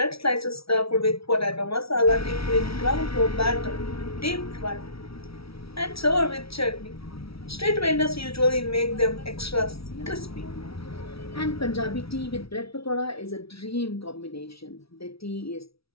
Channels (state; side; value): late; right; 0.76 ms